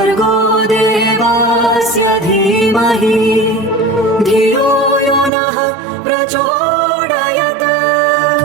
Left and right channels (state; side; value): drops out; left; at 5.3 s